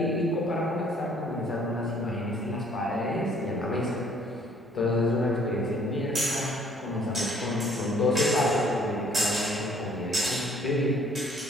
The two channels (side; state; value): both; normal; correlation 0.60